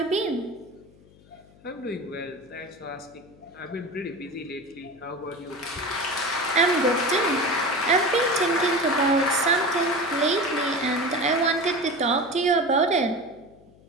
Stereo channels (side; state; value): left; noise; hum, 26 dB below the sound